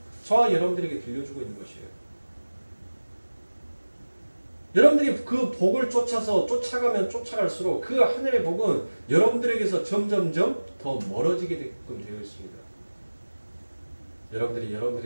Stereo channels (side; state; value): both; inverted; correlation -1.00